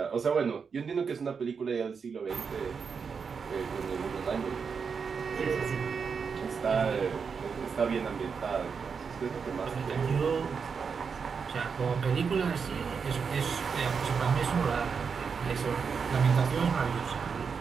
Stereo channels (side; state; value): left; quieter; 5.9 dB